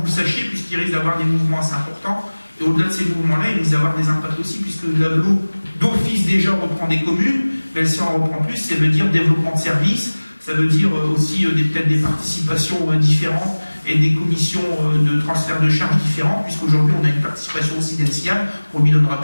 le sachiez, puisqu'il risque d'avoir des mouvements assez importants. Et au-delà de ces mouvements-là, il risque d'avoir des impacts aussi, puisque l'AGLO, d'office déjà, reprend des communes, mais si on en reprend plus, ça veut dire développement de services, ça veut dire aussi peut-être des participations différentes et des commissions de transfert de charges différentes, puisqu'aujourd'hui on a une participation aussi d'Encian qu'on ne lui donnera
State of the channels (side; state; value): both; inverted; correlation -1.00